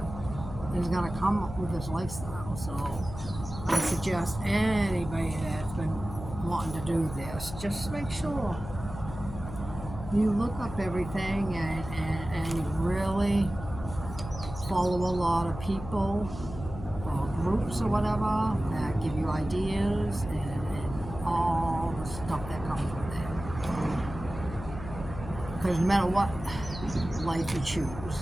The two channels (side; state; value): left; noise; hum, 11 dB below the sound